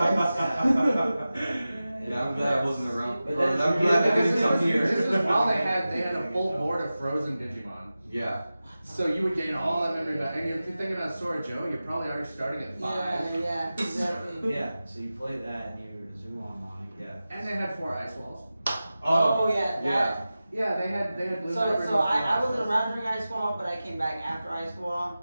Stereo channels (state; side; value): inverted; both; correlation -0.95